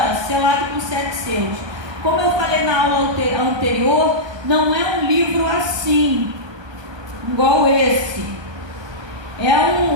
selado com 7 selos. Como eu falei na aula anterior, não é um livro assim, igual esse. É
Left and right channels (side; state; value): left; late; 1.2 ms